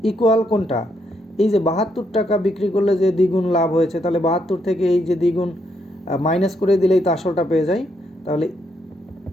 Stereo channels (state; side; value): normal; both; correlation 0.77